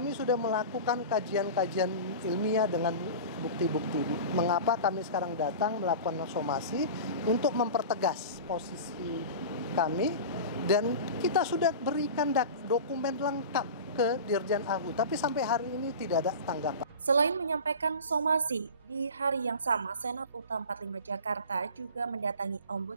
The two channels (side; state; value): both; inverted; correlation -0.33